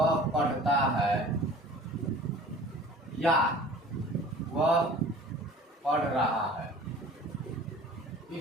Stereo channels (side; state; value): both; normal; correlation 0.45